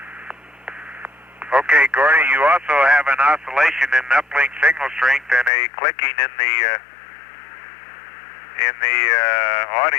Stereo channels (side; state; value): right; drops out; at 5.5 s